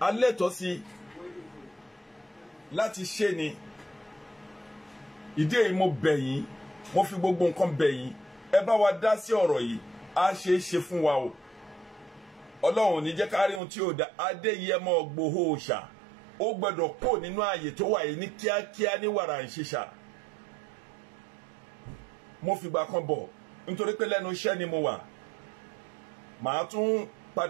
a lẹ́tọ̀ọ́ sí láti ṣe ni. Ìdí èyí mo bẹ̀ yín, mo fi gbogbo nǹkan bẹ̀ yín, ẹ bá wa dá sí ọ̀rọ̀ yìí, á ṣe é ṣe fún wa o. Ọlọ́run ní jẹ́ ká rí ohun tí ó dá. Adéyẹmọ Ìgbòho Òòṣà ó gbọ́dọ̀ kó nínú ààyè tó wà yìí ní kíákíá ní wàrà ìṣiṣà. Mo fìgbà kan bọ̀ nítorí pé lẹ́nu iṣẹ́ ni mo wà. Màá tún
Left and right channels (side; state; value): left; drops out; at 13.6 s